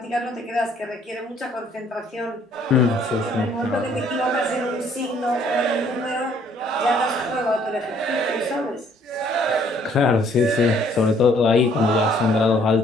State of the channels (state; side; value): normal; both; correlation 0.62